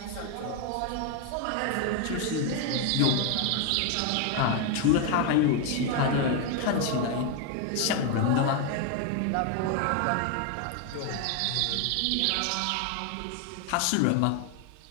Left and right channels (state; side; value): different; both; correlation 0.01